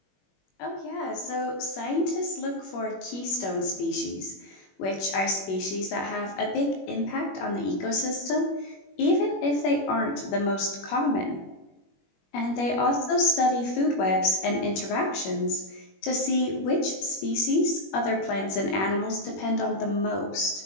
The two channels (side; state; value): right; late; 21 ms